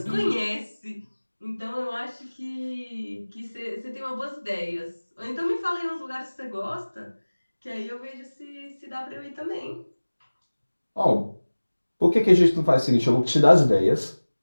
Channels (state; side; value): inverted; both; correlation -1.00